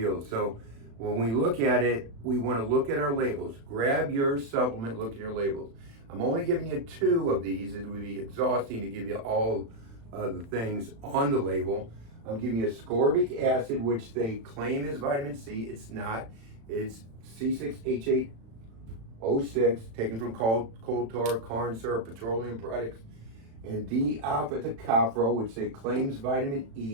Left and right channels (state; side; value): late; left; 36 ms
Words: So, when we look at it, we want to look at our labels. Grab your supplement, look at your labels. I'm only giving you two of these. It would be exhausting to give you all the things on the label. I'm giving you ascorbic acid, which they claim is vitamin C. It's not. It's C6H8 O6, taken from coal tar, corn syrup, petroleum products, and D-alpha tocopherol, which they claims vitamin